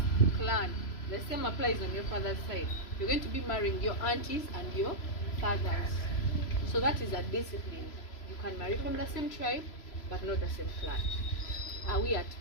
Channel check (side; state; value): right; late; 3.0 ms